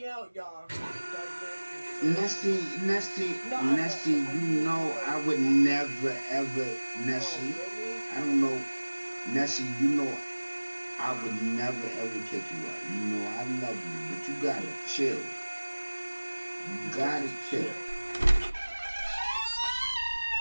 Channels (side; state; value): both; inverted; correlation -1.00